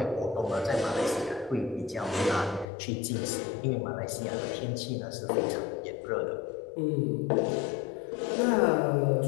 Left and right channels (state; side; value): drops out; right; at 2.7 s